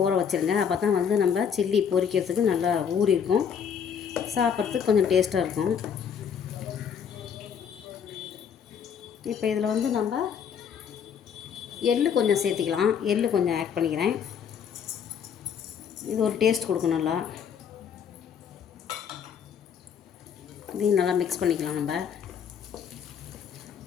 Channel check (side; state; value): right; quieter; 7.5 dB